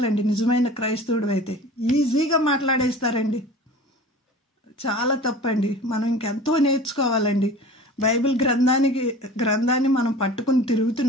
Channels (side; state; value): both; normal; correlation 0.40